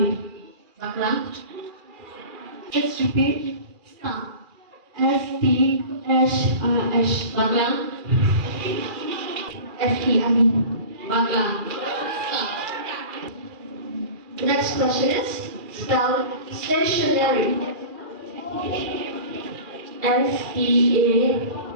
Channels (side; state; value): left; late; 2.4 ms